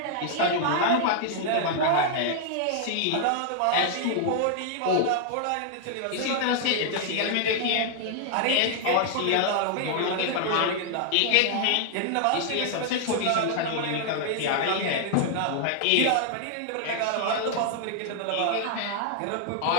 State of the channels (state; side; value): different; both; correlation 0.00